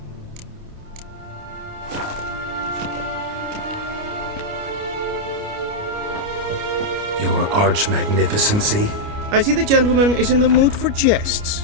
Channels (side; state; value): left; late; 29 ms